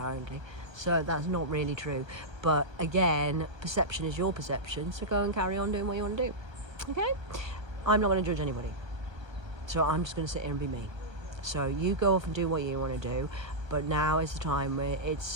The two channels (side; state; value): left; late; 1.2 ms